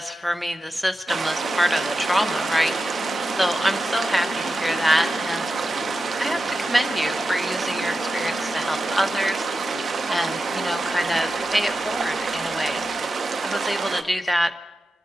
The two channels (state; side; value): normal; both; correlation 0.91